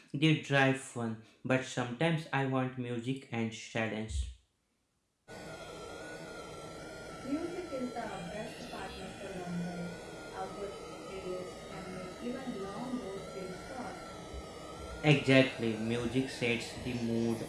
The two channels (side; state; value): both; identical; correlation 1.00